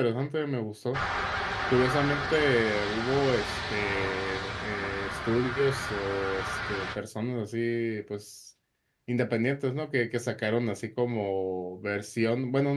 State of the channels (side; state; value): both; identical; correlation 1.00